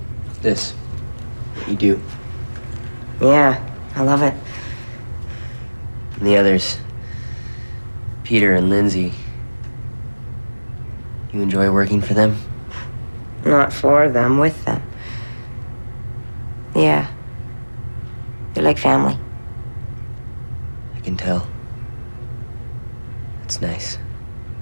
This. You do. Yeah, I love it. And the others, Peter and Lindsay, you enjoy working for them? Not for them, with them. Yeah. They're like family. I can tell. It's nice.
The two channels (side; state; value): both; inverted; correlation -1.00